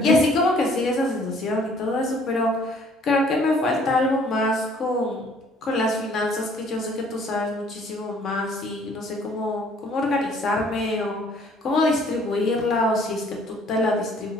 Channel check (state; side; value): normal; both; correlation 0.58